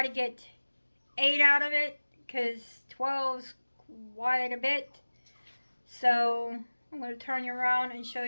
to get 8 out of it because 12 is quite a bit. So I'm going to turn you around and show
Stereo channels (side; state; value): both; inverted; correlation -1.00